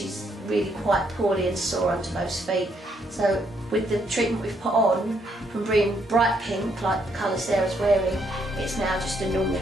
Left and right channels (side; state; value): both; normal; correlation 0.73